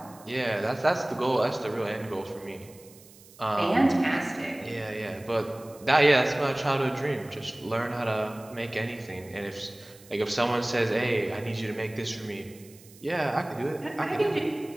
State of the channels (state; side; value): noise; right; hiss, 23 dB below the sound